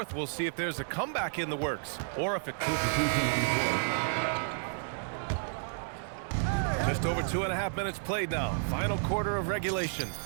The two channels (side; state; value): left; silent; 57 dB below the other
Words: we'll see if there's a comeback in the works, or if it... Just over 2.5 minutes played now. Final quarter of regulation.